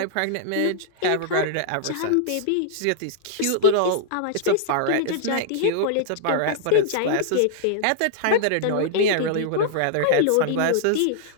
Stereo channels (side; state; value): both; different; correlation -0.01